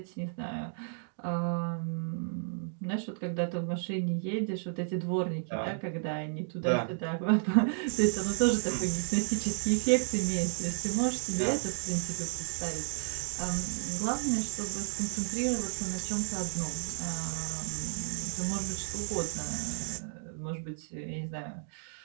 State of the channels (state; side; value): silent; left; digital silence